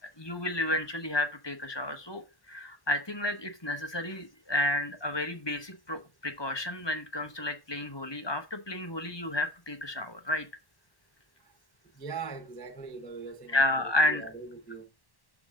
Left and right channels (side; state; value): right; late; 1.2 ms